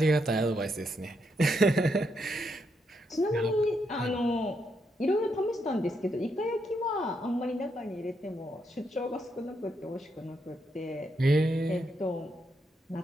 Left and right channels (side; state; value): both; normal; correlation 0.79